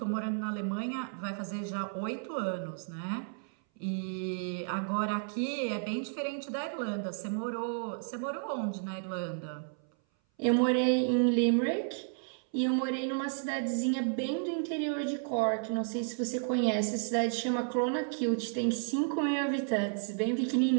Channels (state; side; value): silent; left; 56 dB below the other